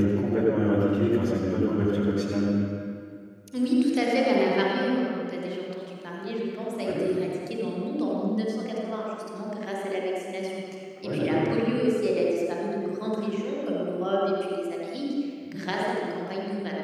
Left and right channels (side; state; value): both; identical; correlation 1.00